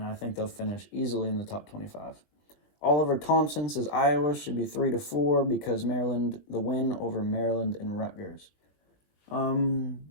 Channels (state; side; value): late; right; 20 ms